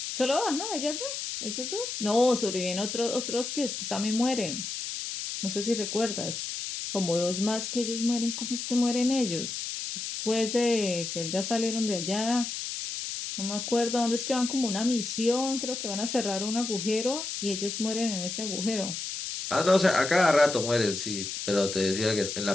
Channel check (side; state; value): left; noise; hiss, 5 dB below the sound